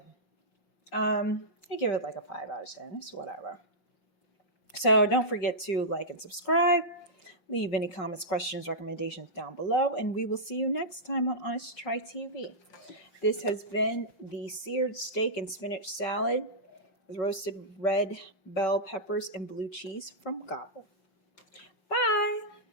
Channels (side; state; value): right; late; 5.6 ms